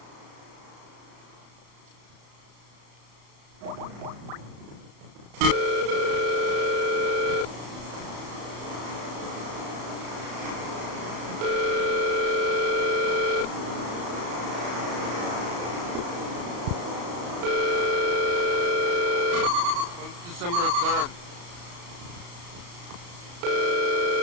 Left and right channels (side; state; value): left; late; 34 ms